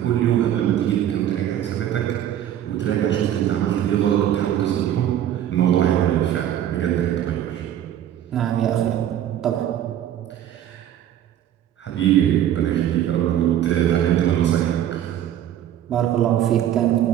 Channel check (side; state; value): left; quieter; 11.1 dB